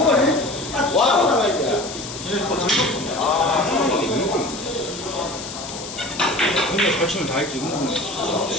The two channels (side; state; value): left; noise; hiss, 10 dB below the sound